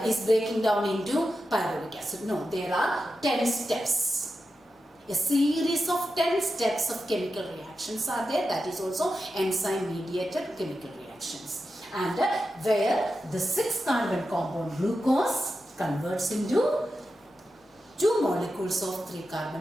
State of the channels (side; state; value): both; normal; correlation 0.90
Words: is breaking down into pyruvic acid. No, there are 10 steps. A series of 10 steps of chemical reactions are there. That is also enzyme mediated chemical reactions. And where the 6 carbon compound glucose converts into 2 molecules of 3